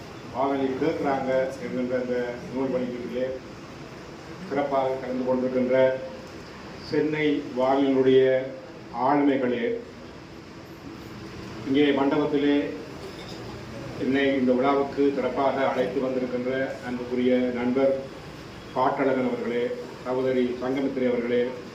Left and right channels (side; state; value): both; identical; correlation 1.00